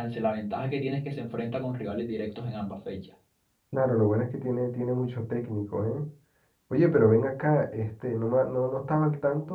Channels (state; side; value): identical; both; correlation 1.00